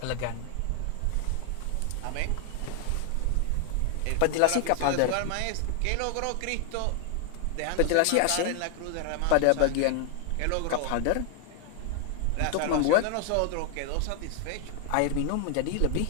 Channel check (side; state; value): both; different; correlation 0.00